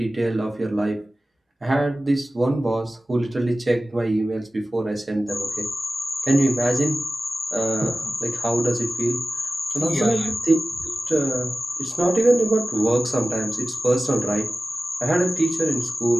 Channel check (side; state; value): both; normal; correlation 0.96